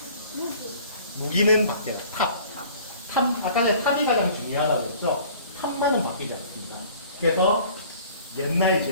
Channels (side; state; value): both; inverted; correlation -0.49